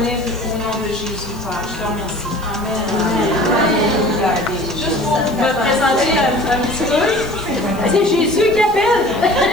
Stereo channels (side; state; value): left; noise; hiss, 22 dB below the sound